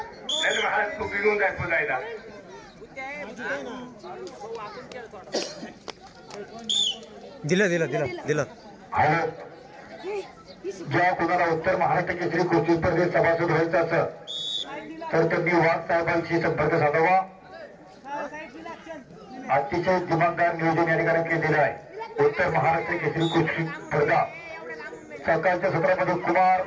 महाराज तू बिघून जाय पुजायला. दिलं दिलं दिलं दिलं. ज्या कोणाला उत्तर महाराष्ट्र केसरी कुस्ती स्पर्धेत सभासद व्हायचं असं तर त्यांनी वाघ साहेबांशी संपर्क साधावा. अतिशय दिमागदार नियोजन या ठिकाणी केलेलं आहे. उत्तर महाराष्ट्र केसरी कुस्ती स्पर्धा सकाळच्या सत्रामध्ये कुमार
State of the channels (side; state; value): both; identical; correlation 1.00